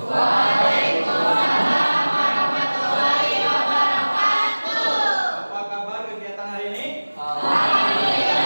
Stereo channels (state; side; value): inverted; both; correlation -1.00